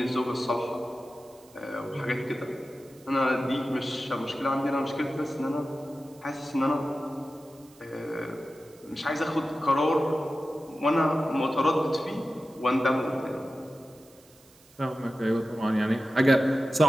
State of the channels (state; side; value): noise; right; hiss, 27 dB below the sound